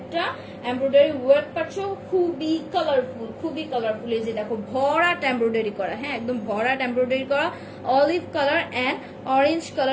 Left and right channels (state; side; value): identical; both; correlation 1.00